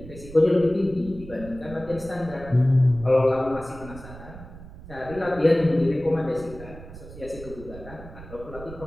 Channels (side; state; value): right; noise; rumble, 15 dB below the sound